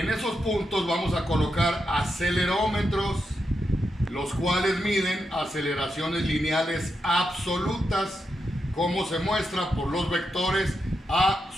esos puntos vamos a colocar acelerómetros, los cuales miden aceleraciones lineales absolutas, como se muestra por los vectores A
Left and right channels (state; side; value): normal; both; correlation 0.85